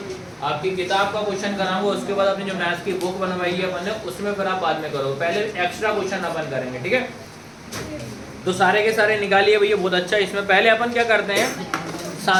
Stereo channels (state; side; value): identical; both; correlation 1.00